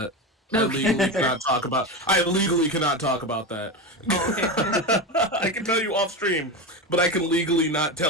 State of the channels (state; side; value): normal; both; correlation 0.19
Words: Okay. I legally cannot talk about that. Oh, okay. I can tell you off stream, but I can legally not